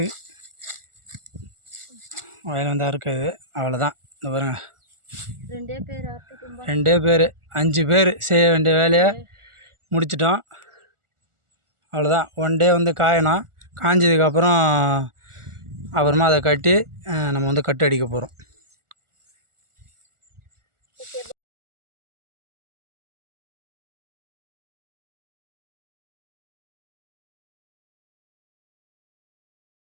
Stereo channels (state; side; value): late; left; 1.4 ms